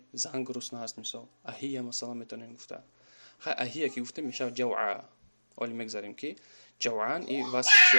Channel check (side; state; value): both; inverted; correlation -1.00